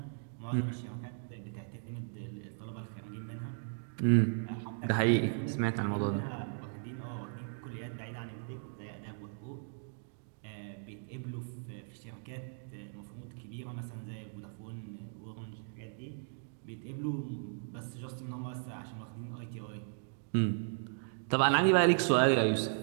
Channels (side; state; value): left; silent; digital silence